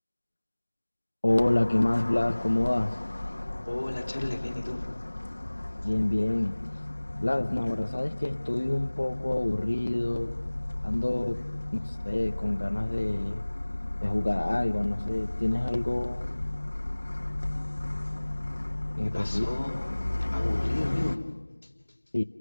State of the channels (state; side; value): inverted; both; correlation -1.00